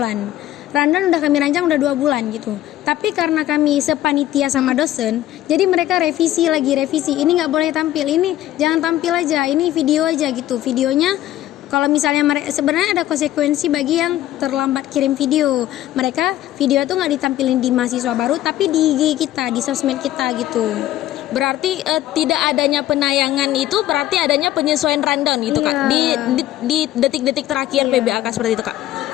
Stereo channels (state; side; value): quieter; right; 13.8 dB